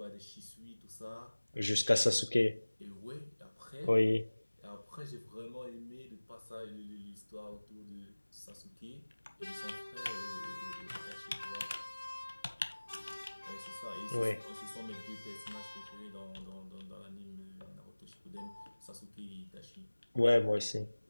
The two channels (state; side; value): inverted; both; correlation -1.00